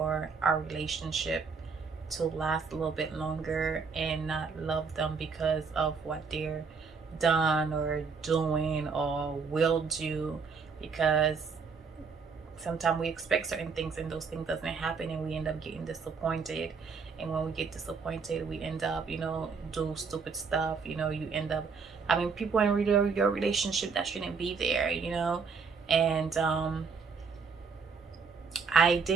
our relationship to last a little bit longer, and not love them because of what they're done or doing or will do. Because sometimes we expect certain things and those things doesn't happen, and we end up getting disappointed. And when we get disappointed, we end up do stupid stuff. You end up people in your relationship that shouldn't be there. And I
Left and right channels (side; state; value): left; quieter; 5.3 dB